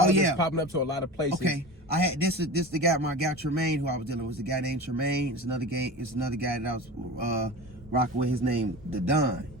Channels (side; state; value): both; normal; correlation 0.32